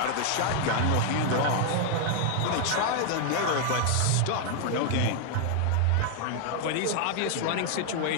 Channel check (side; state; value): both; different; correlation 0.00